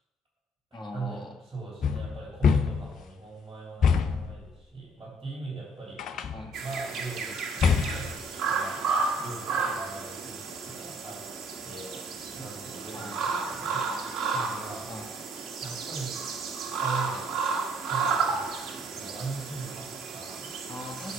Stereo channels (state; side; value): normal; both; correlation 0.61